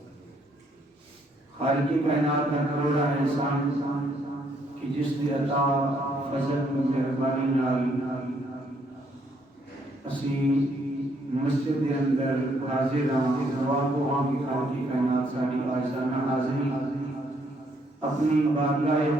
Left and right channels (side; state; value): both; normal; correlation 0.70